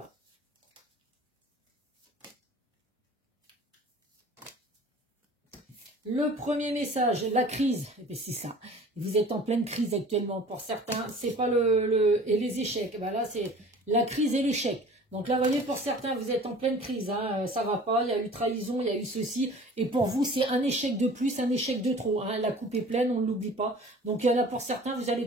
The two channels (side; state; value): both; normal; correlation 0.45